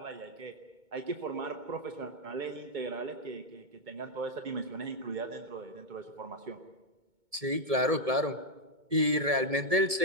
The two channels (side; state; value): left; late; 2.2 ms